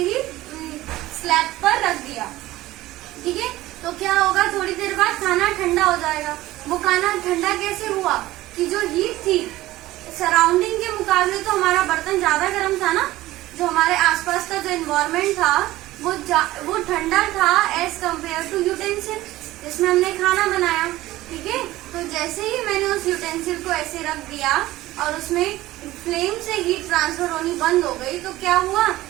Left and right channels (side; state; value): left; quieter; 16.7 dB